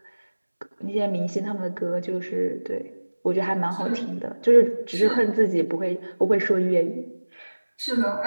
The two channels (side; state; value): both; inverted; correlation -1.00